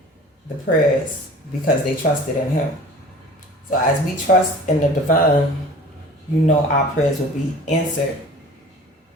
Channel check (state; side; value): normal; both; correlation 0.43